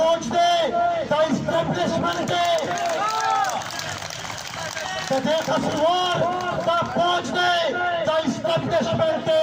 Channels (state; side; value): identical; both; correlation 1.00